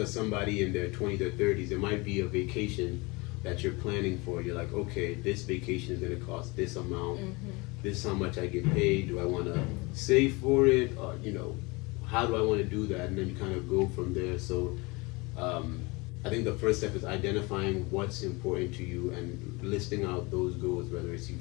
somebody in their 20s or 30s, it might be a vacation that you're planning for. You're like, okay, this vacation is going to cost this amount. This is how much I get paid. Do I want to save for it? Or, you know, how do I want to do that? And then you kind of go from there. So I think the first step is identifying what's important to you and listing out those goals, whether it's you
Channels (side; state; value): right; quieter; 25.8 dB